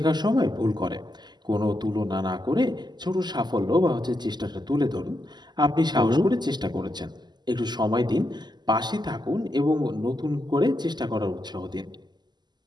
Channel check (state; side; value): late; left; 0.21 ms